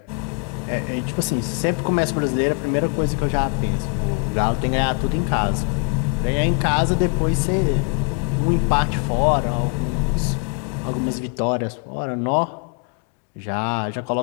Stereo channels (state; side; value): quieter; right; 38.9 dB